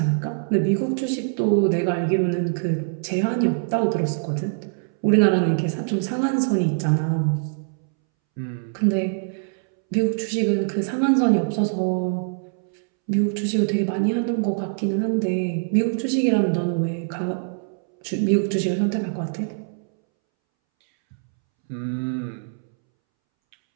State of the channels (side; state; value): left; silent; 63 dB below the other